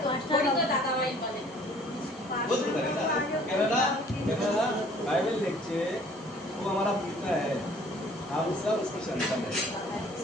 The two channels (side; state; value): both; normal; correlation 0.54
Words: Bible लिखছে वो हमारा पिता है, हम सब उसके संतान हैं।